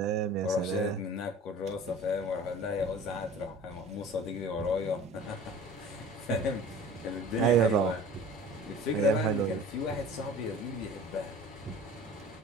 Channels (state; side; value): normal; both; correlation 0.43